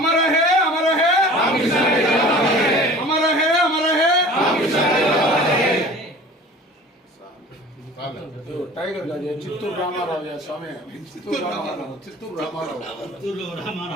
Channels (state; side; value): normal; both; correlation 0.43